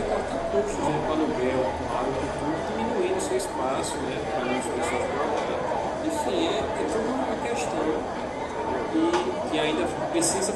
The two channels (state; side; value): identical; both; correlation 1.00